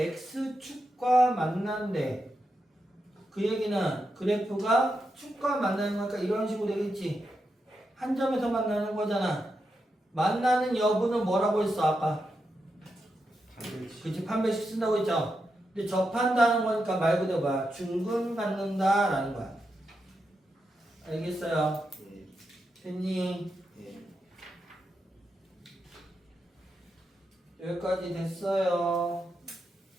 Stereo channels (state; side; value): normal; both; correlation 0.86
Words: 만난대. 그 얘기는 그래프가 축과 만나는 거니까 이런 식으로 되겠지. 한 점에서 만나는 거잖아. 만나는 여부는 뭐라고 했어 아까? 그치, 판별식 쓴다고 했죠. 근데 접한다는 거니까 말 그대로 뭐야? 중근 갖는다라는 거야. 알겠어요? 예. 됐니? 예. 여기까지 됐어요.